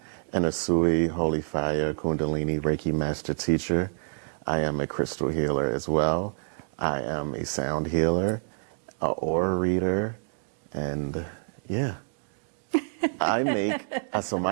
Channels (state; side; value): silent; left; digital silence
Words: an Usui Holy Fire Kundalini Reiki Master Teacher. I am a crystal healer as well. I am a sound healer, an aura reader, and yeah. I make, so